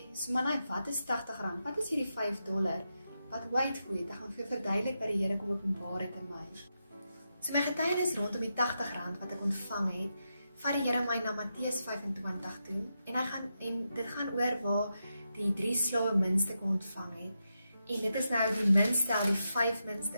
Sumanai, wat is R80? Wat is hierdie $5? Wat wait for it? Ek gaan vir verduidelik wat die Here kom openbaar het in my. So my getuienis rondom die R80 wat ek ontvang het, vat die Here my na Matteus 25 toe en dit gaan oor waar die 3 slawe muntstukke ontvang het. En dit is nou die munt stel die 5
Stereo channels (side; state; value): both; inverted; correlation -0.86